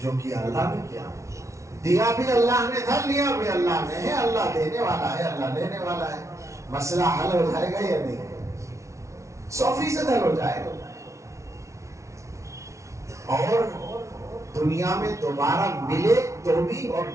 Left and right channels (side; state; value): left; late; 0.14 ms